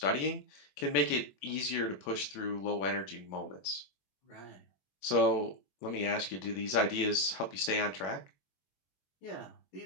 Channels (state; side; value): late; right; 21 ms